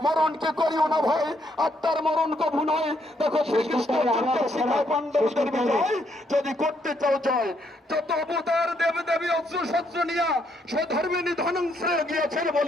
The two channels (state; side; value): normal; both; correlation 0.73